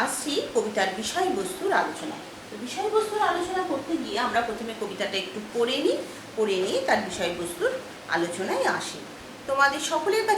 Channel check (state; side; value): identical; both; correlation 1.00